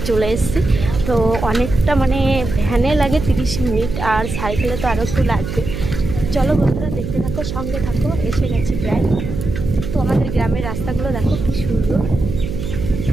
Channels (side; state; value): right; noise; hum, 6 dB below the sound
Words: চলে এসেছি। তো অনেকটা মানে ভ্যানে লাগে 30 মিনিট আর সাইকেলে তো আরও একটু লাগবে। চলো বন্ধুরা দেখতে থাকো, সঙ্গে থাকো। এসে গেছি প্রায়। তো আমাদের গ্রামের রাস্তাগুলো দেখো কি সুন্দর।